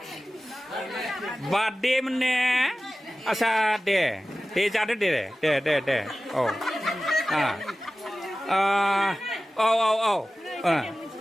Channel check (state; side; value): normal; both; correlation 0.96